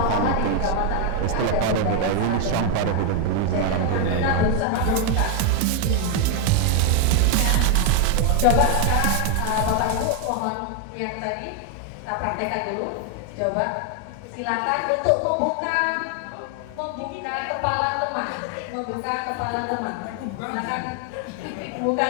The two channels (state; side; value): different; both; correlation 0.01